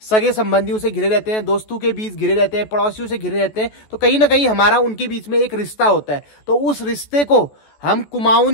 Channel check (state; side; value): late; right; 14 ms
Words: सगे संबंधियों से घिरे रहते हैं, दोस्तों के बीच घिरे रहते हैं, पड़ोसियों से घिरे रहते हैं, तो कहीं ना कहीं हमारा उनके बीच में एक रिश्ता होता है। तो उस रिश्ते को हम